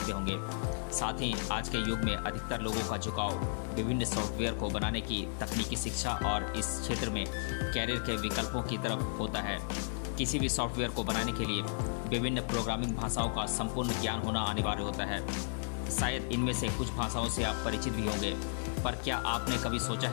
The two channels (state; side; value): silent; right; digital silence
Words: होंगे। साथ ही आज के युग में अधिकतर लोगों का झुकाव विभिन्न सॉफ्टवेयर को बनाने की तकनीकी शिक्षा और इस क्षेत्र में कैरियर के विकल्पों की तरफ होता है। किसी भी सॉफ्टवेयर को बनाने के लिए विभिन्न प्रोग्रामिंग भाषाओं का संपूर्ण ज्ञान होना अनिवार्य होता है। शायद इनमें से कुछ भाषाओं से आप परिचित भी होंगे, पर क्या आपने कभी सोचा